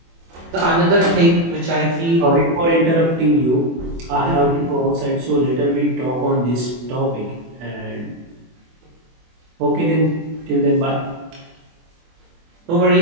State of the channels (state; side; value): late; left; 24 ms